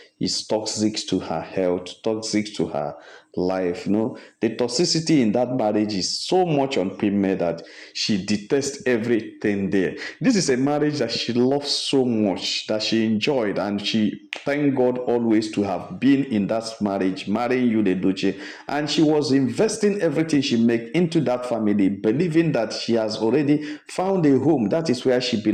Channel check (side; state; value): both; identical; correlation 1.00